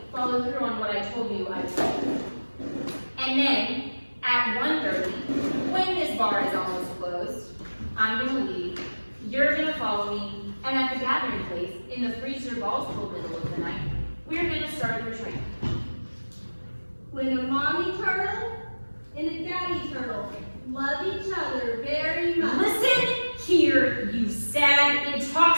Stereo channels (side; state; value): both; inverted; correlation -1.00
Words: follow through on what I told you I would do. And then, at 1:30, when this bar is almost closed, I'm going to leave, you're going to follow me, and at the gathering place, in the freezer balls till middle of the night, we're going to start your training. When a mommy turtle and a daddy turtle love each other very much. Listen here, you sad,